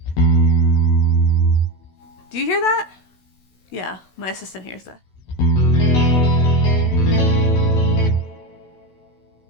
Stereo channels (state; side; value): late; right; 16 ms